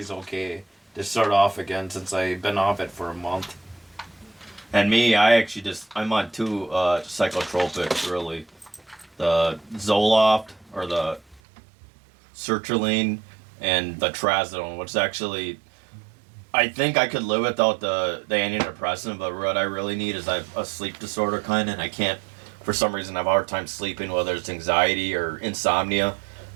okay to start off again since I've been off it for a month. And me, I'm on 2 psychotropics, really. The Zoloft, or the sertraline, and the trazodone, which actually, I think I could live without the antidepressant, but what I really need is I have a sleep disorder kind of, and I can't, for some reason, I have a hard time sleeping, whether it's anxiety or insomnia.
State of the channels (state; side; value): drops out; left; at 11.4 s